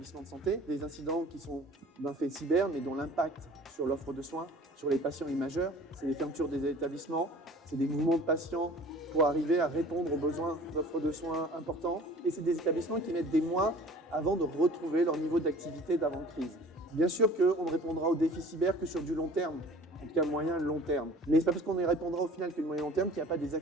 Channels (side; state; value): both; normal; correlation 0.47